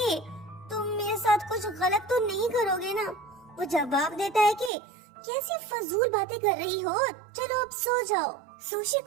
तुम मेरे साथ कुछ गलत तो नहीं करोगे ना। वो जवाब देता है कि कैसी फजूल बातें कर रही हो, चलो अब सो जाओ। सुशी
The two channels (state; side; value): drops out; left; at 4.7 s